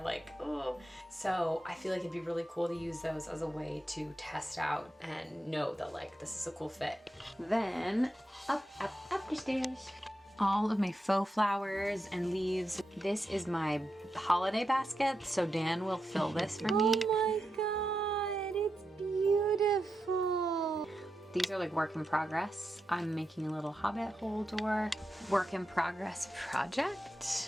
oh. So I feel like it'd be really cool to use those as a way to test out and know that like this is a cool fit. Then up the stairs. All of my faux flowers and leaves. This is my holiday basket, so Dan will fill this for me. Oh my god, it's beautiful. These are like work in progress. I'm making a little hobbit hole door. Work in progress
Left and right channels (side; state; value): both; normal; correlation 0.87